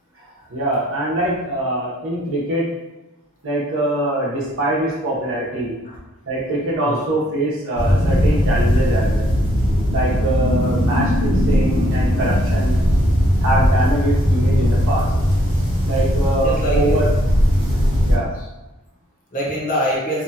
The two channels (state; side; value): normal; both; correlation 0.69